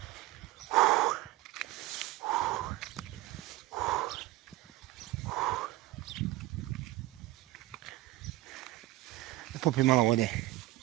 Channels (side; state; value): left; quieter; 17.6 dB